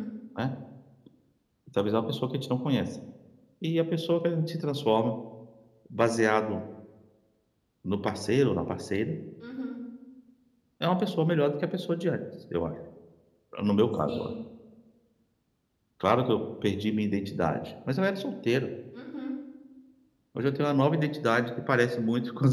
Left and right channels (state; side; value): identical; both; correlation 1.00